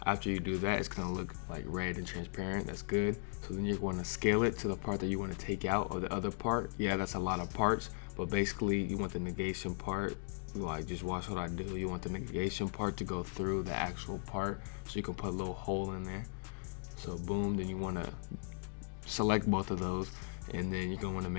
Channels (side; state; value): right; silent; digital silence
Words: After you do that, it's going to look like red and transparent. That's good. So then you're going to scale it to the part that you want to take out, or the other part. Yeah, that's a lot of parts, but basically you want the negation part, like just watch what I do. You want the negation part to go through the actual part, so you can put a little hole in there. So boom, then you want to select both of those, and then you're going to want to